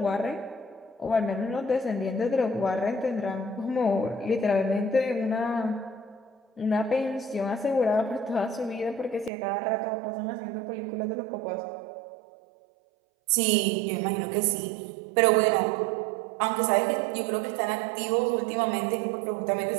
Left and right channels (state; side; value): drops out; left; at 9.3 s